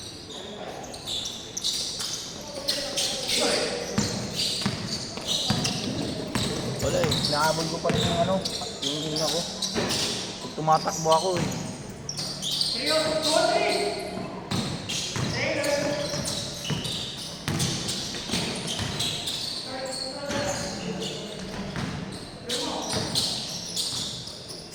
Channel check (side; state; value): both; identical; correlation 1.00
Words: Wala eh, nahabol ko pa rin yung ano, yung hina ko. Pag tumatakbo ako eh.